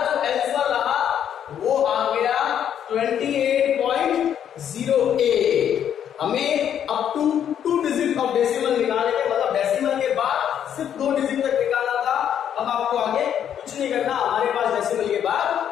आंसर रहा वो आ गया 28.08। हमें up to 2 digit of decimal निकालने के, मतलब डेसिमल के बाद सिर्फ 2 डिजिट तक निकालना था। अब आपको आगे कुछ नहीं करना, हमारे पास डेसिमल के बाद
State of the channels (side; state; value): right; quieter; 9.3 dB